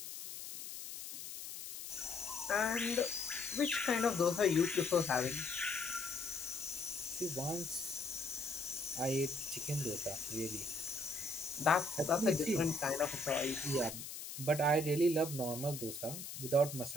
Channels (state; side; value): noise; left; hiss, 9 dB below the sound